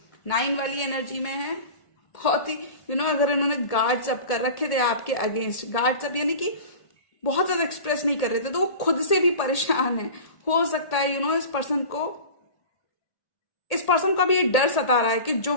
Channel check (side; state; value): right; late; 1.8 ms